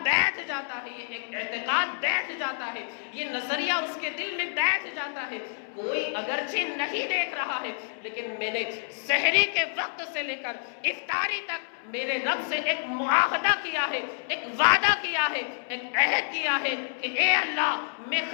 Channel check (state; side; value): silent; right; 59 dB below the other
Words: بیٹھ جاتا ہے، یہ ایک اعتقاد بیٹھ جاتا ہے، یہ نظریہ اس کے دل میں بیٹھ جاتا ہے، کوئی اگرچہ نہیں دیکھ رہا ہے لیکن میں نے سحری کے وقت سے لے کر افطاری تک میرے رب سے ایک معاہدہ کیا ہے، ایک وعدہ کیا ہے، ایک عہد کیا ہے کہ اے اللہ میں